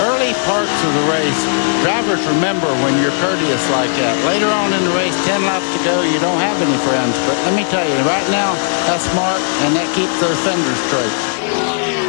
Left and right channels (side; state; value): right; silent; 69 dB below the other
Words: parts of the race, drivers remember when you're courteous like that. Later on in the race, 10 laps to go, you don't have any friends. But let me tell you, right now, that's smart, and that keeps those fenders straight.